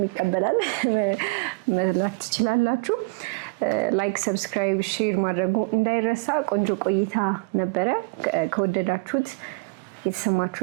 ይቀበላል፣ መላክ ትችላላችሁ። ላይክ፣ ሰብስክራይብ፣ ሼር ማድረጉ እንዳይረሳ። ቆንጆ ቆይታ ነበረ። ከወደዳችሁት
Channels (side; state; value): left; quieter; 29.0 dB